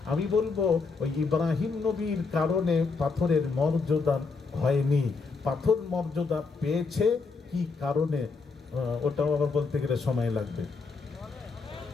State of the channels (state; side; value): quieter; right; 4.5 dB